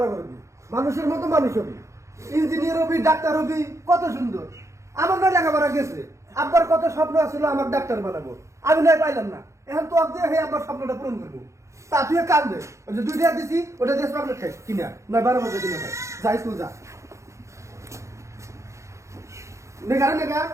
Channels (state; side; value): late; left; 0.14 ms